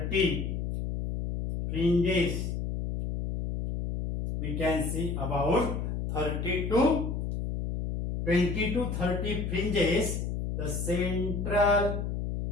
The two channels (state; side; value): noise; left; hum, 3 dB below the sound